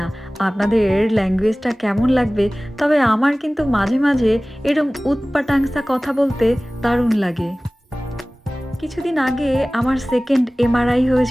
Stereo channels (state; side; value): normal; both; correlation 0.98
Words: আপনাদের ল্যাঙ্গুয়েজটা কেমন লাগবে, তবে আমার কিন্তু মাঝে মাঝে এরম উৎপাটাংসা কথা বলতে দারুণ লাগে। কিছুদিন আগে আমার সেকেন্ড এমআরআই